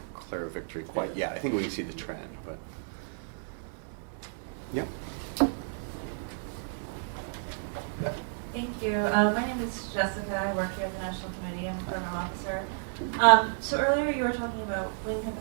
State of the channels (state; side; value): silent; left; digital silence